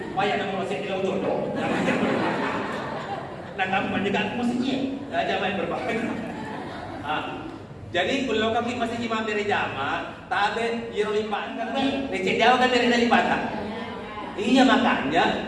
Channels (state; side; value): identical; both; correlation 1.00